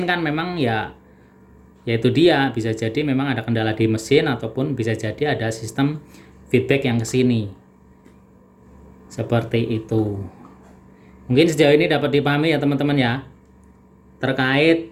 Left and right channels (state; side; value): identical; both; correlation 1.00